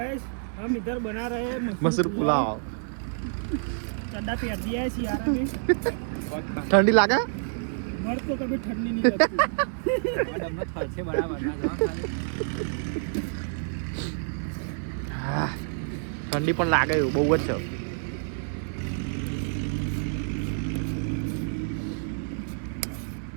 हम इधर बना रहे हैं मसूर पुलाव. चड्डा पहन दिया है सियारा में। ठंडी लागे? मर्द को कभी ठंडी नहीं लगती। હા ઠંડી પણ લાગે એવું બહુ જ છે.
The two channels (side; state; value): left; silent; digital silence